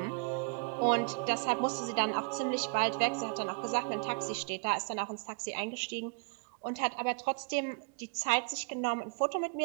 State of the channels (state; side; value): quieter; left; 37.8 dB